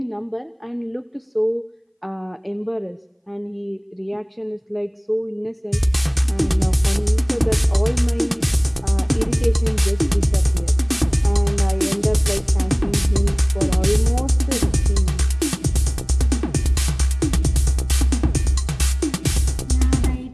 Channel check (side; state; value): both; identical; correlation 1.00